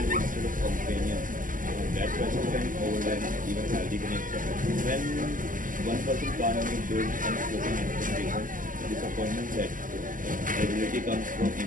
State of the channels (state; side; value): late; left; 0.39 ms